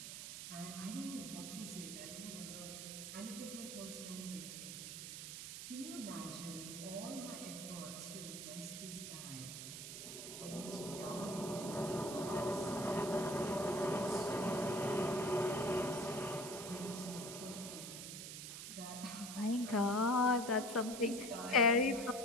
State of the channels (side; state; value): right; noise; hiss, 8 dB below the sound